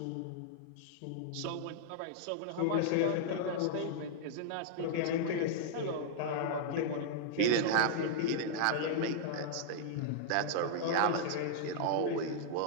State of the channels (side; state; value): both; different; correlation -0.01